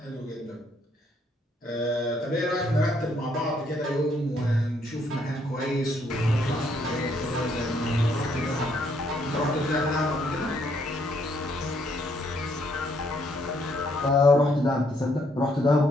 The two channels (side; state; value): both; normal; correlation 0.70